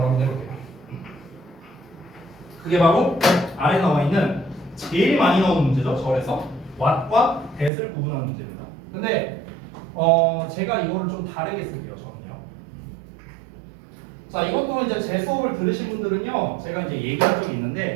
한번 해볼게요. 그게 바로 아래 나와 있는 제일 많이 나오는 문제죠. 절에서 what과 that을 구분하는 문제입니다. 근데 제가 이거를 좀 다르게 쓸게요. 저는요. 자, 이것도 이제 제 수업을 들으신 분들은요, 제가 이제 얘기한 적이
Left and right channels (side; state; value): left; drops out; at 7.7 s